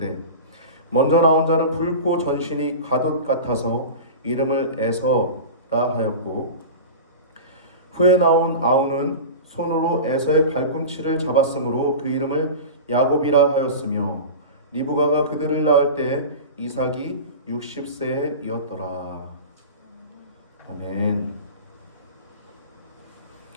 먼저 나온 자는 붉고 전신이 가돛 같아서 이름을 에서라 하였고 후에 나온 아우는 손으로 에서의 발꿈치를 잡았으므로 그 이름을 야곱이라 하였으며 리브가가 그들을 낳을 때 이삭이 60세이었더라. 아멘.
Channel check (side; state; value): both; inverted; correlation -0.31